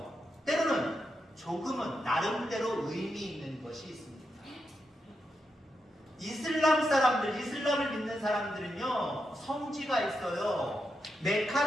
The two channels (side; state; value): both; normal; correlation 0.85